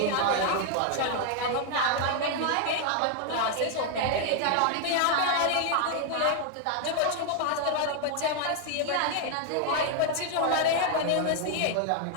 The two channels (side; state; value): both; different; correlation 0.00